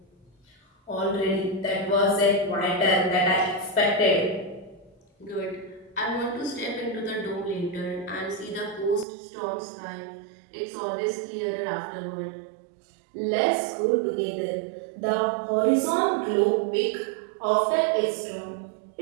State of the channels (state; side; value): drops out; left; at 9.1 s